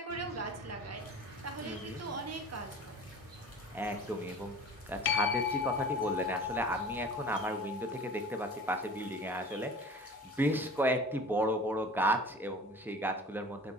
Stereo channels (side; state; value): both; normal; correlation 0.41